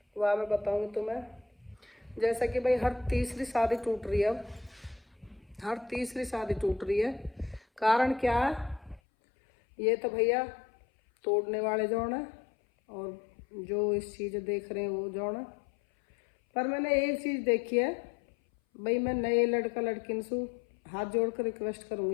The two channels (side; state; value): right; drops out; at 9.0 s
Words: वह मैं बताऊंगी तुम्हें। जैसा कि भाई हर तीसरी शादी टूट रही है अब, हर तीसरी शादी टूट रही है। कारण क्या है? ये तो भैया तोड़ने वाले जौन है और जो इस चीज़ देख रहे हैं वो जौन है। पर मैंने एक चीज़ देखी है भाई, मैं नए लड़का लड़किन से हाथ जोड़ कर रिक्वेस्ट